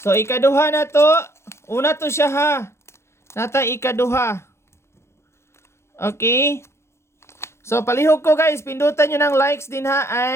So ikaduha na to. Una to siya ha. Nata ikaduha. Okay? So palihog ko guys, pindutan niyo ng likes din ha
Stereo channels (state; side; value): late; right; 0.13 ms